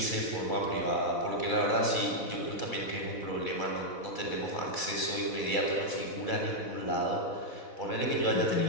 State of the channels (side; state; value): right; late; 4.1 ms